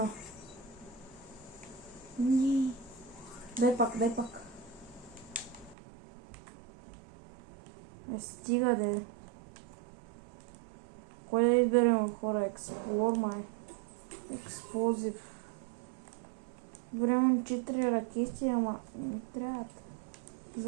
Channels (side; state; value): left; drops out; at 5.8 s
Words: Дай пак. Стига де. Кой да изберем, хора? Експлор май. Експлозив. Време 4 ракети, ама не трябва